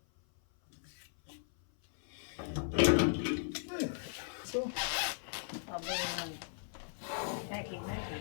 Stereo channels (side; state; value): right; silent; 53 dB below the other